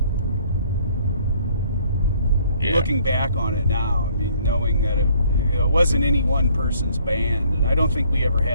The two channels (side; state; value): both; inverted; correlation -0.62